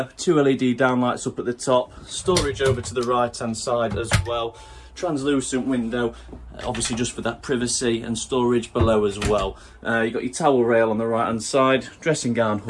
2 LED downlights up at the top, storage over to the right hand side as well, translucent window, obviously just for that privacy, and storage below as well. You've got your towel rail on the right hand side, dressing gown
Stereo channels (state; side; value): identical; both; correlation 1.00